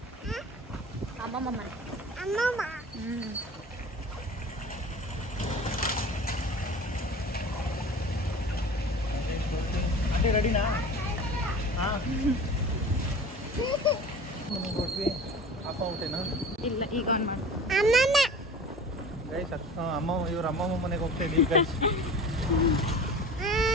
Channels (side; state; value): both; normal; correlation 0.39